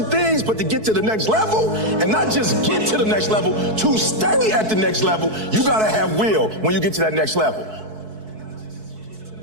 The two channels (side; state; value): left; late; 4.6 ms